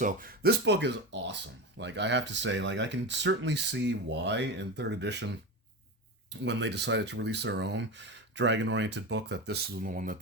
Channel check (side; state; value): both; normal; correlation 0.22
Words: this book is awesome. Like I have to say, like I can certainly see why in third edition, when they decided to release their own dragon-oriented book, that this is the one that